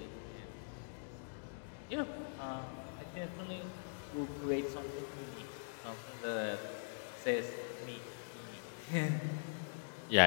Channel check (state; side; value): silent; right; digital silence